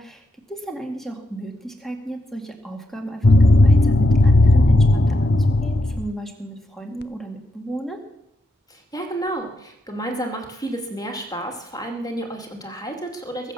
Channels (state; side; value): normal; both; correlation 0.84